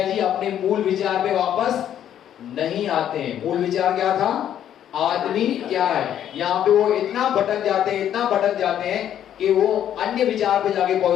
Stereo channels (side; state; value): right; quieter; 10.4 dB